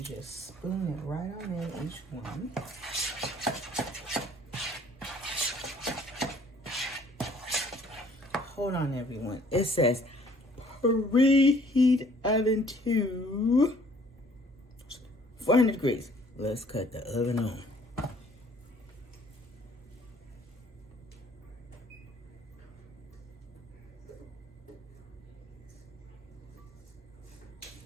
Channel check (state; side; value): normal; both; correlation 0.58